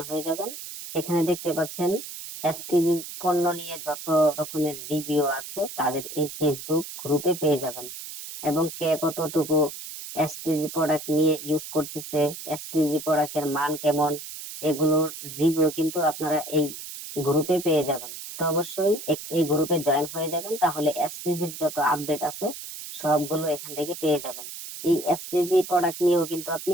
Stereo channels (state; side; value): noise; right; hiss, 10 dB below the sound